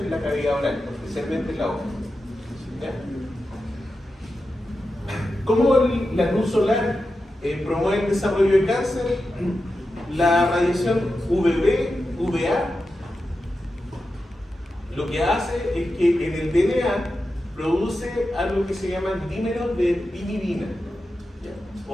en la cavidad oral, especialmente en la boca. ¿Ya? ¿Cómo la luz solar promueve el desarrollo de cáncer? La radiación UVB, UVA, lo que hace es que en el DNA produce algo que se llama dímeros de pirimidina, ¿ya?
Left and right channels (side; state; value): both; normal; correlation 0.90